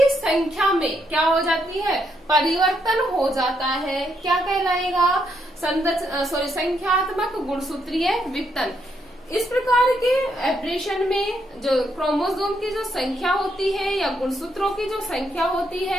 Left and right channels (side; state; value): both; normal; correlation 0.77